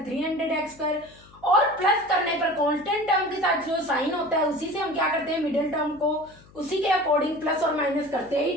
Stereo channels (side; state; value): left; noise; hum, 25 dB below the sound